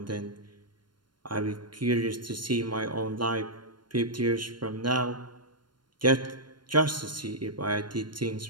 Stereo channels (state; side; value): late; left; 0.72 ms